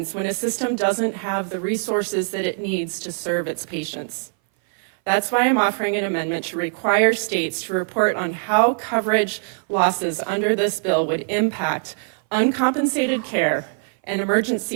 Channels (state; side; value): silent; left; 59 dB below the other